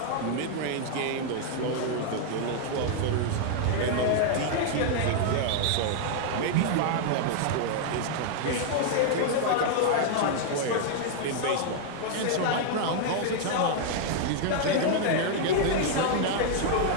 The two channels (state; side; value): different; both; correlation -0.01